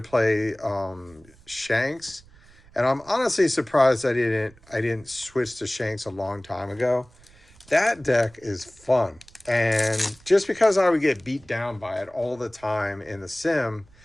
play Shanks, and I'm honestly surprised I didn't switch to Shanks a long time ago. That deck is fun, and just because I would get beat down by it all the time in the sim,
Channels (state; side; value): noise; right; rumble, 26 dB below the sound